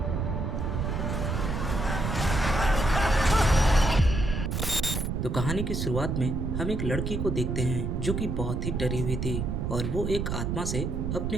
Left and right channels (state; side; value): noise; right; rumble, 1 dB below the sound